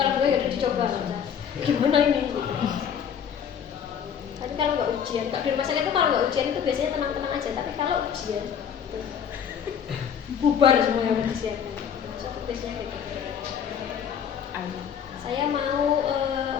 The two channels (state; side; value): quieter; right; 8.1 dB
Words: gue ya udah dicoba aja. Gimana ini? Gitu. Tapi kalau nggak ujian, kalau di rumah sakit itu kalau nggak ujian itu biasanya tenang-tenang aja. Tapi kalau ujian, tuh, bubar semua yang disiapkan. Satu biasanya gitu. Saya mau